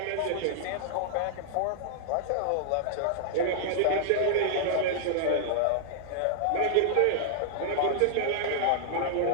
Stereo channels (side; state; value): both; different; correlation -0.01